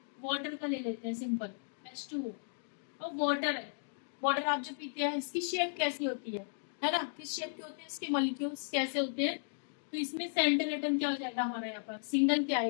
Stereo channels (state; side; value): silent; right; digital silence